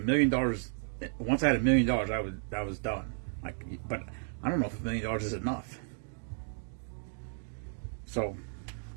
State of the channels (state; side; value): silent; left; 56 dB below the other